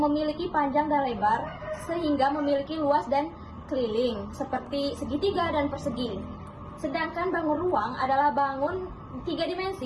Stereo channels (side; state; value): both; identical; correlation 1.00